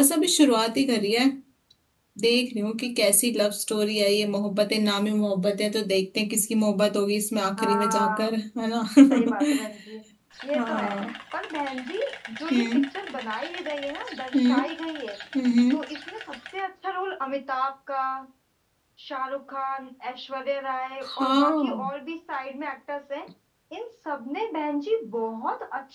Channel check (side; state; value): both; identical; correlation 1.00